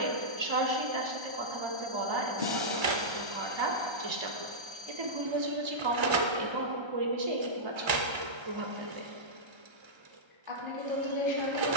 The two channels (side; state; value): left; late; 1.3 ms